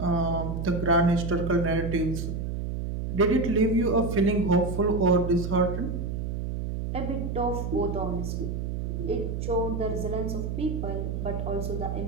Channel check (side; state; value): right; noise; hum, 3 dB below the sound